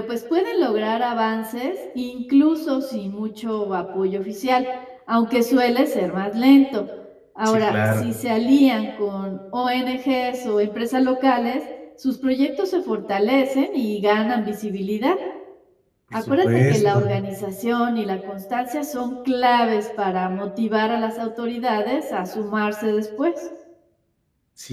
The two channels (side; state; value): both; identical; correlation 1.00